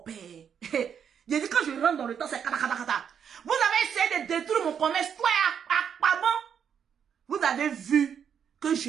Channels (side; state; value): left; quieter; 7.8 dB